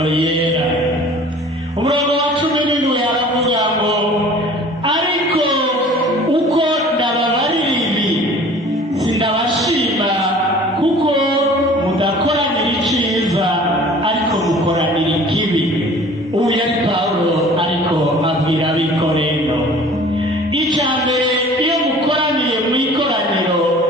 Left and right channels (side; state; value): both; normal; correlation 0.47